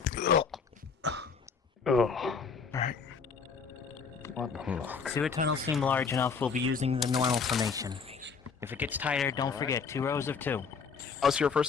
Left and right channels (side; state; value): right; quieter; 5.6 dB